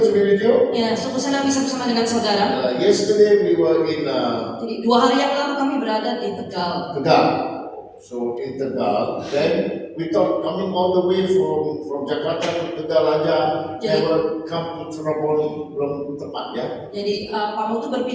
to be with you. Ya, sungguh senang bisa bersama dengan saudara. Yesterday we were in Jadi 2 hari yang lalu kami berada di Tegal. Tegal. So in Tegal, then we thought coming all the way from Jakarta to Tegal aja, never come to Cirebon belum tepat ya. Jadi Pak Mutu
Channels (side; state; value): both; identical; correlation 1.00